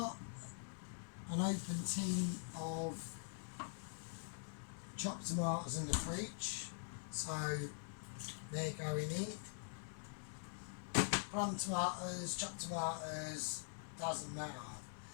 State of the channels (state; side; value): silent; right; digital silence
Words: an open tin of chopped tomatoes in the fridge, so they're going in. Plum tomatoes, chopped tomatoes, doesn't matter.